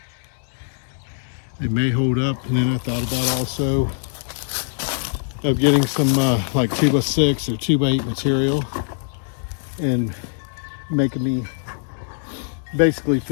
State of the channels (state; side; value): silent; right; digital silence